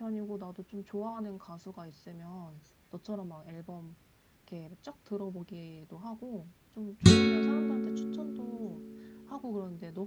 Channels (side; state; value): both; identical; correlation 1.00